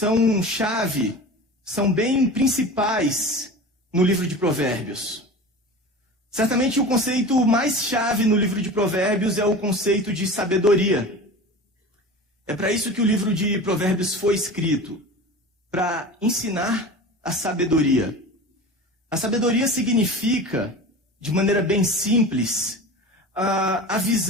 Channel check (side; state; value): both; normal; correlation 0.34